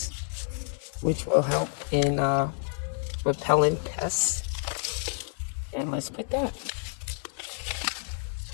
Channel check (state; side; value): silent; right; 59 dB below the other